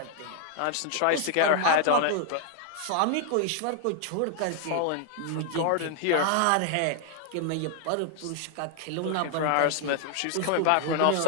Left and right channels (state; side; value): different; both; correlation 0.00